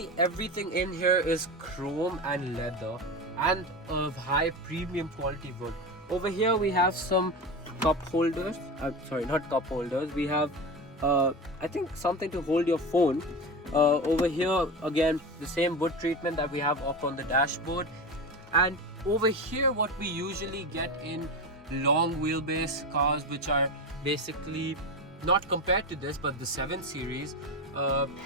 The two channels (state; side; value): normal; both; correlation 0.23